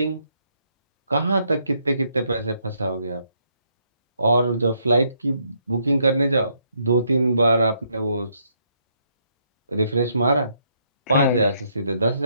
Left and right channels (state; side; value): inverted; both; correlation -0.74